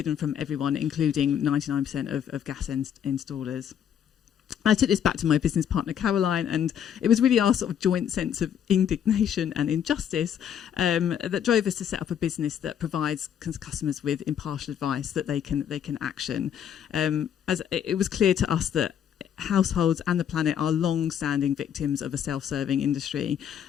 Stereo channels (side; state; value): right; quieter; 9.0 dB